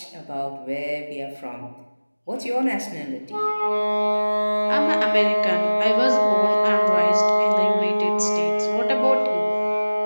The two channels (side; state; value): both; inverted; correlation -1.00